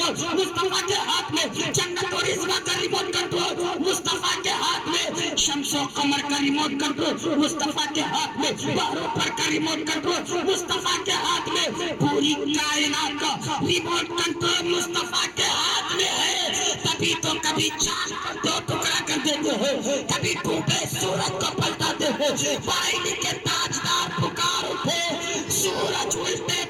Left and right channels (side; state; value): both; identical; correlation 1.00